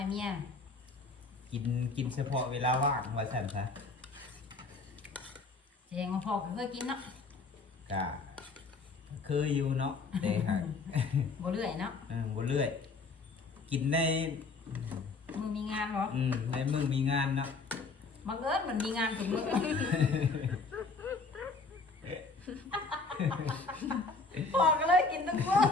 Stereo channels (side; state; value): right; quieter; 4.0 dB